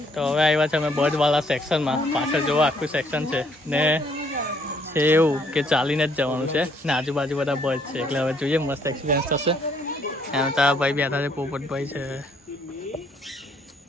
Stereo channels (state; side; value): normal; both; correlation 0.66